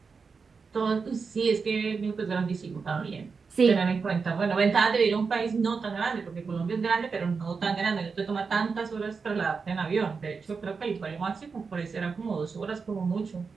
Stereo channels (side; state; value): left; quieter; 5.1 dB